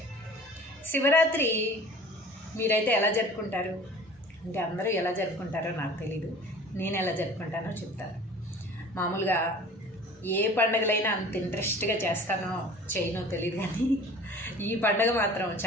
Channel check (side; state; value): both; normal; correlation 0.43